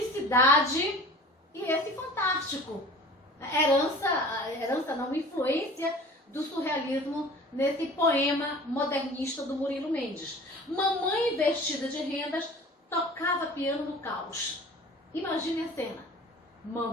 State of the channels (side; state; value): both; normal; correlation 0.43